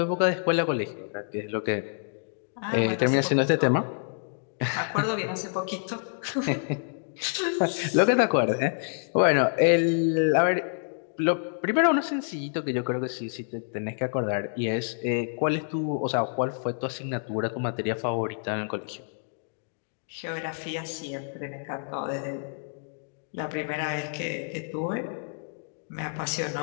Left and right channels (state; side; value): silent; right; digital silence